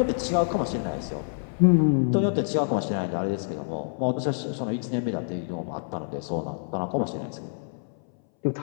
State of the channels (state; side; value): silent; right; 60 dB below the other